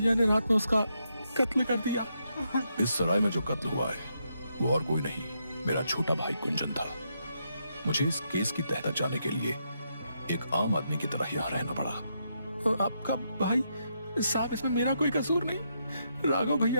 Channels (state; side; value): inverted; both; correlation -0.80